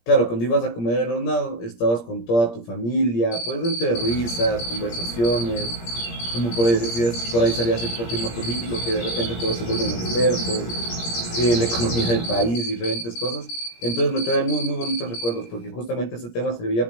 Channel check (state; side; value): late; right; 17 ms